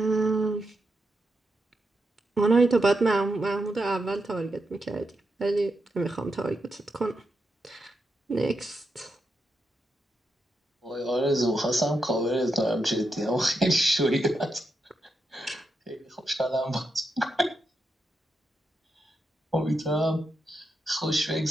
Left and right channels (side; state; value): both; normal; correlation 0.85